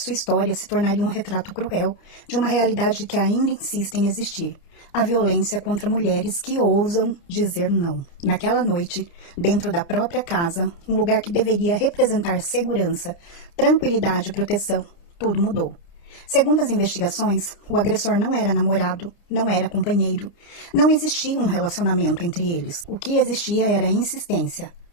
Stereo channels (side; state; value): right; late; 29 ms